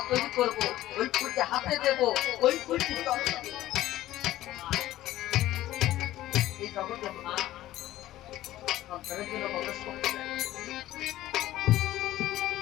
তৈরি করবো, ওই ফুলকে হাতে দেবো, ওই ফুলটি এই জগতে মা সন্তানের জন্য কত শক্তি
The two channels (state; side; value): quieter; right; 14.8 dB